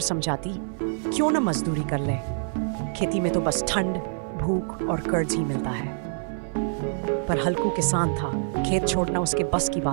क्यों न मजदूरी कर ले, खेती में तो बस ठंड, भूख और कर्ज ही मिलता है। पर हल्कू किसान था, खेत छोड़ना उसके बस की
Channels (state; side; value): silent; left; digital silence